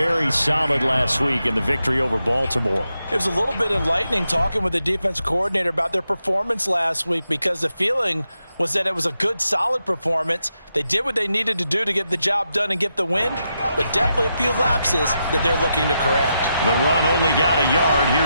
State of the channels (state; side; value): inverted; both; correlation -0.85